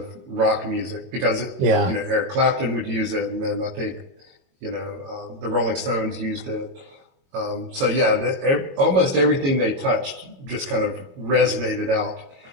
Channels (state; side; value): late; left; 22 ms